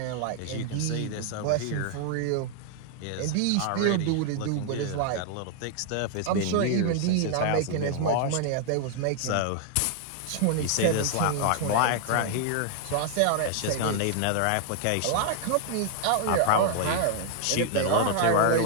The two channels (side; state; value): both; different; correlation 0.00